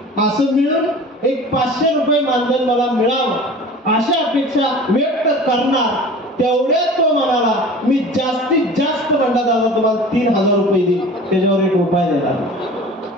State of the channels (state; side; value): normal; both; correlation 0.40